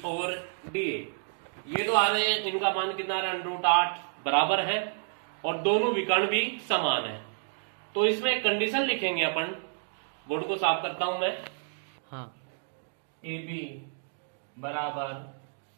और DA। ये तो आ रहे हैं, इनका मान कितना √8 बराबर है और दोनों विकर्ण भी समान है। तो इसमें एक कंडीशन लिखेंगे अपन, बोर्ड को साफ करता हूं मैं। हाँ। ए बी बराबर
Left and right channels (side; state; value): left; silent; digital silence